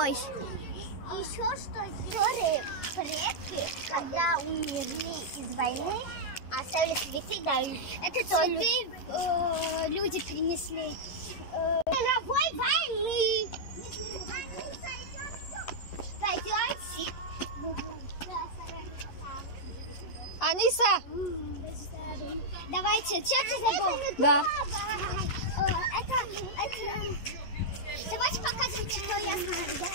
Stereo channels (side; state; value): right; late; 11 ms